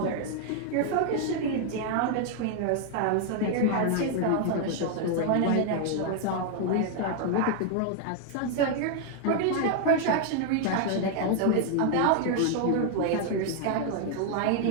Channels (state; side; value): different; both; correlation 0.00